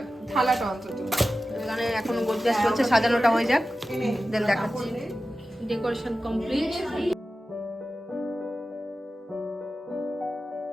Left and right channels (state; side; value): normal; both; correlation 0.94